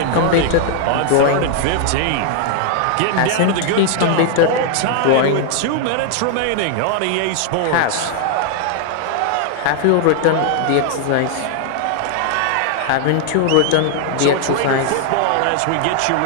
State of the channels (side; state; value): both; different; correlation 0.00